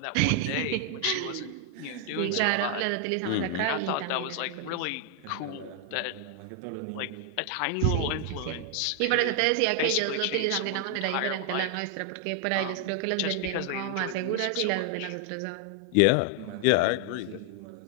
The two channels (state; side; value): different; both; correlation 0.00